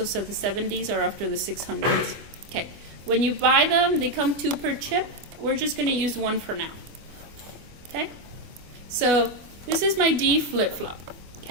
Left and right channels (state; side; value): late; left; 24 ms